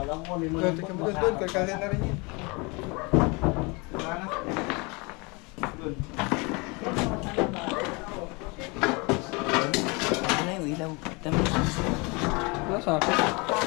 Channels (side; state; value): right; quieter; 28.4 dB